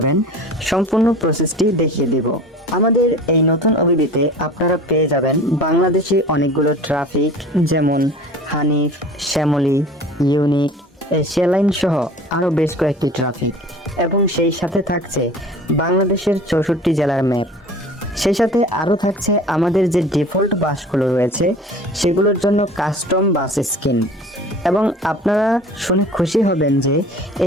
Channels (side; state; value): both; normal; correlation 0.42